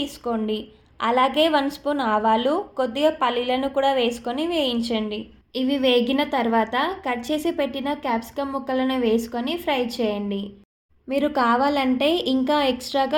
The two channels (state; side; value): identical; both; correlation 1.00